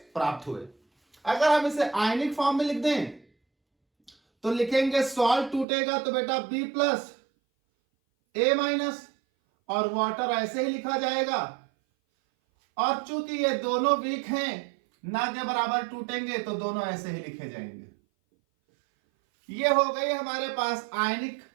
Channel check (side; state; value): left; drops out; at 5.7 s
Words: प्राप्त हुए। अगर हम इसे आयनिक फॉर्म में लिख दें तो लिखेंगे सॉल्ट टूटेगा तो बेटा B प्लस A माइनस, और वाटर ऐसे ही लिखा जाएगा। और चूंकि ये दोनों वीक हैं, ना के बराबर टूटेंगे, तो दोनों ऐसे ही लिखे जाएंगे। ये हो गई हमारे पास आयनिक